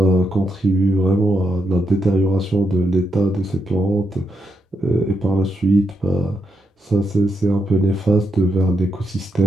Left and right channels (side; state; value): both; normal; correlation 0.82